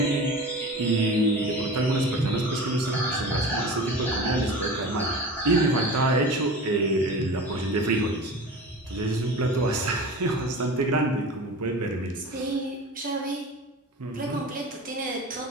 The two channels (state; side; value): normal; both; correlation 0.35